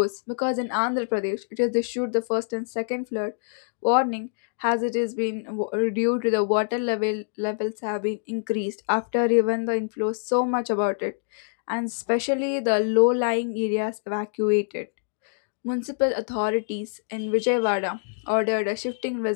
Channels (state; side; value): silent; right; digital silence